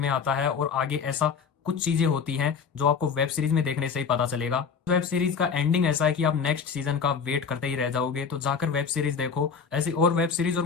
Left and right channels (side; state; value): right; quieter; 6.1 dB